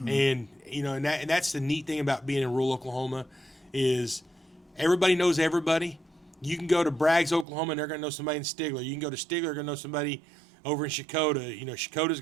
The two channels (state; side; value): drops out; left; at 7.5 s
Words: Mm-hmm. And that's the neat thing about being in rural Oklahoma is everybody knows everybody. You can go to Braggs, Oklahoma, and they're going to know somebody in Stigler. You can go to Stigler, they're going to know somebody over in Shakota. Shakota's